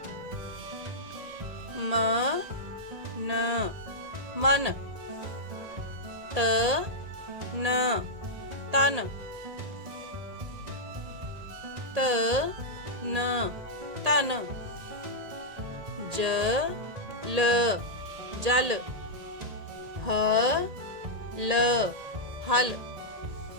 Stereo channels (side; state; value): left; late; 1.8 ms